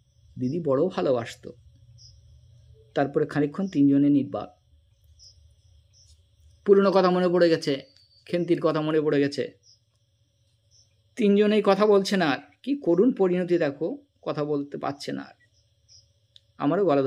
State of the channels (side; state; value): both; identical; correlation 1.00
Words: দিদি বড় ভালোবাসতো। তারপরে খানিকক্ষণ তিনজনে নির্বাক। পুরনো কথা মনে পড়ে গেছে, খেন্তির কথা মনে পড়ে গেছে। তিনজনেই কথা বলছে না। আর কি করুণ পরিণতি দেখো, কথা বলতে পারছে না আর। আমারও গলা